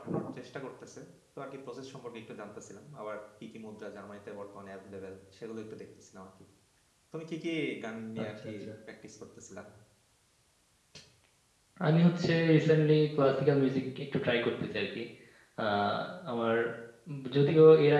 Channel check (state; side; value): identical; both; correlation 1.00